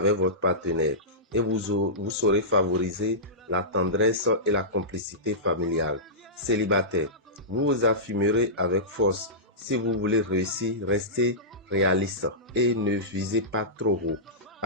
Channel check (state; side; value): normal; both; correlation -0.18